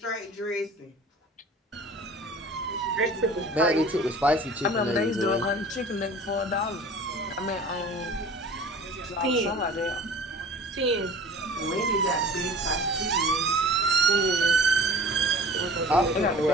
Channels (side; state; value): both; normal; correlation 0.43